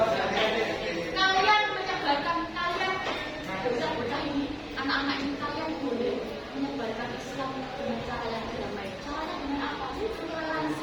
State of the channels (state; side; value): identical; both; correlation 1.00